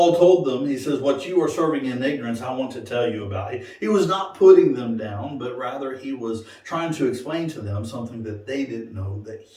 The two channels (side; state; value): both; identical; correlation 1.00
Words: told them, he says, what you are serving in ignorance, I want to tell you about. He was not putting them down, but rather he was trying to explain to them something that they didn't know that